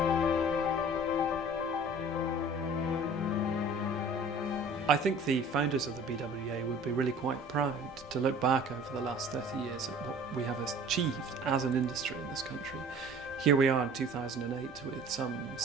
I think the founders of the BWEA would be really quite proud to look back over the last 30 years at what we have achieved as an industry in this country. Here we are in 2008 with some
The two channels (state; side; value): normal; both; correlation 0.46